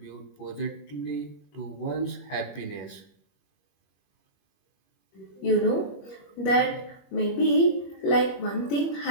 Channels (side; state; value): right; late; 21 ms